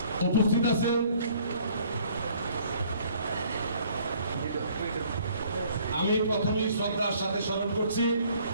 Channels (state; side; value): inverted; both; correlation -0.59